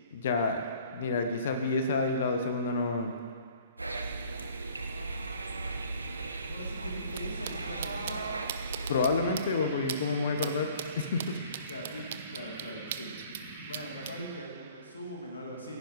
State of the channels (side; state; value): both; inverted; correlation -0.54